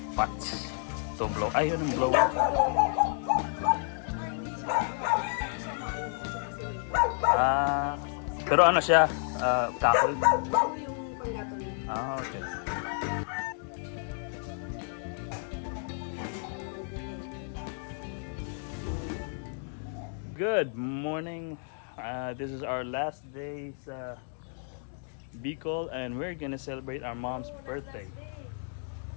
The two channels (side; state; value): right; silent; 57 dB below the other